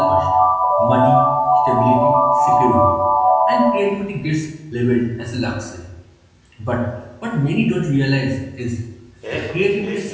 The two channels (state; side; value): identical; both; correlation 1.00